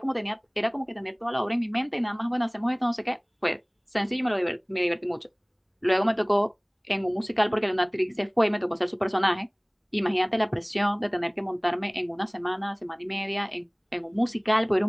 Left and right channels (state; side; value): identical; both; correlation 1.00